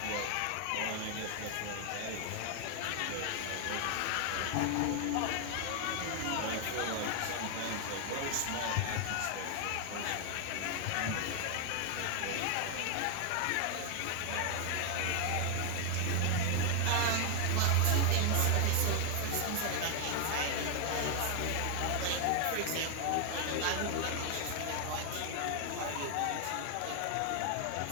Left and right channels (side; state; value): both; different; correlation 0.00